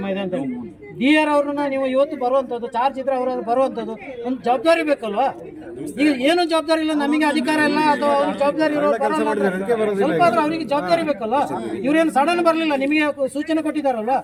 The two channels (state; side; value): identical; both; correlation 1.00